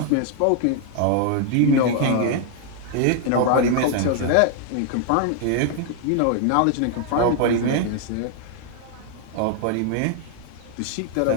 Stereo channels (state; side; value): different; both; correlation 0.00